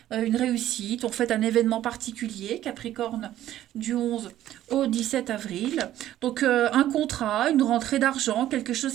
une réussite, on fête un événement particulier, Capricorne, du 11 au 17 avril. Donc un contrat, une rentrée d'argent, quelque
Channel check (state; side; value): quieter; left; 13.0 dB